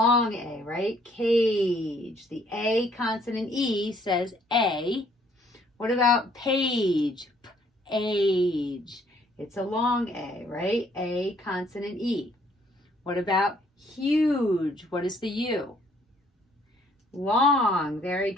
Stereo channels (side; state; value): both; normal; correlation 0.64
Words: A, right? Cage. The A consonant E says A. What about page? Age. It's a long A, right? A consonant E. What about huge? What is the U? Long. Very